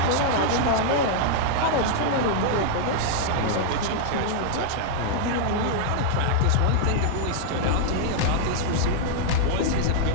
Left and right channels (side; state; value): both; different; correlation -0.01